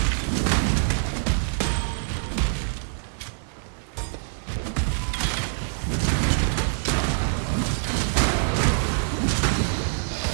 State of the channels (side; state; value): left; silent; 62 dB below the other